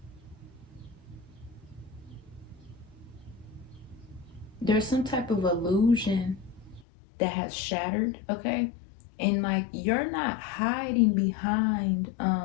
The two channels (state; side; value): drops out; right; at 6.9 s